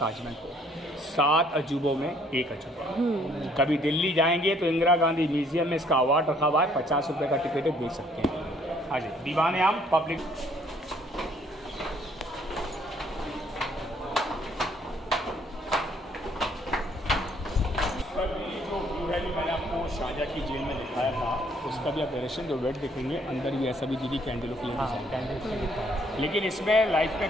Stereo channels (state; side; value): normal; both; correlation 0.63